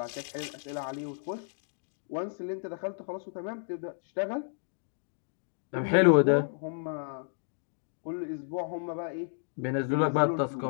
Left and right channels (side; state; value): right; silent; digital silence